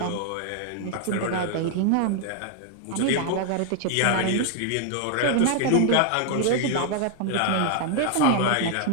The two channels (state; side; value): different; both; correlation 0.00